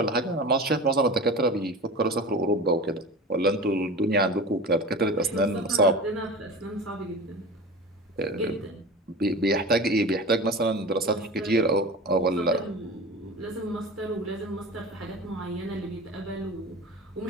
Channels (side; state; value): both; normal; correlation 0.33